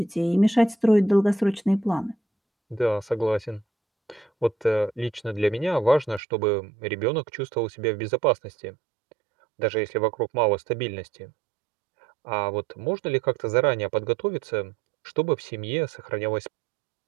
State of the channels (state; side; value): drops out; left; at 6.2 s